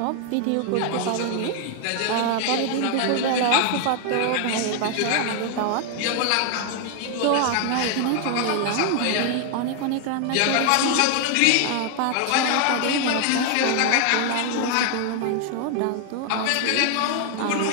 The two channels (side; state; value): both; different; correlation 0.00